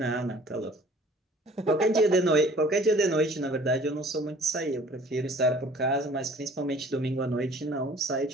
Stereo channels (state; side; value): normal; both; correlation 0.51